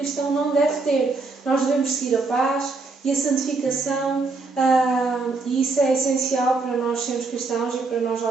não deve ter. Nós devemos seguir a paz e a santificação, e isso é essencial para nós sermos cristãos e para nós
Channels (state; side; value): quieter; left; 3.8 dB